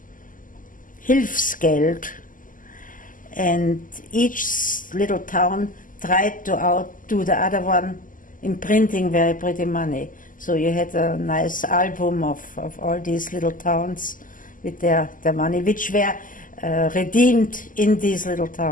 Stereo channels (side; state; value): right; late; 0.39 ms